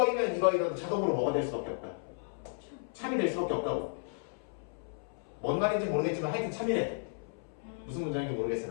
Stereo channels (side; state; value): right; silent; 55 dB below the other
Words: 이거이면 자동으로 뭐가 될 수밖에 없다. 참이 될 수밖에 없다고. 뭔 말인지 모르겠지만 하여튼 참이래. 무슨 문장인지